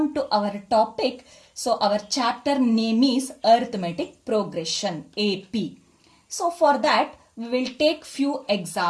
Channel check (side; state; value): both; identical; correlation 1.00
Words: to our topic. So, our chapter name is arithmetic progression, AP. So, for that, we will take few